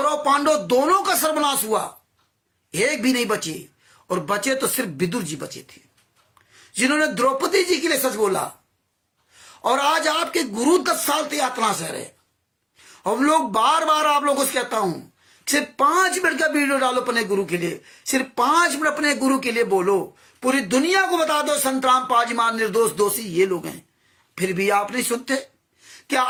पांडव दोनों का सर्वनाश हुआ, एक भी नहीं बचे। और बचे तो सिर्फ विदुर जी बचे थे, जिन्होंने द्रौपदी जी के लिए सच बोला। और आज आपके गुरु 10 साल से यातना सह रहे। हम लोग बार बार आप लोगों से कहता हूं, सिर्फ 5 मिनट का वीडियो डालो अपने गुरु के लिए, सिर्फ 5 मिनट अपने गुरु के लिए बोलो, पूरी दुनिया को बता दो संतराम पाजी महाराज निर्दोष दोषी ये लोग हैं। फिर भी आप नहीं सुनते। क्या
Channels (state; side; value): identical; both; correlation 1.00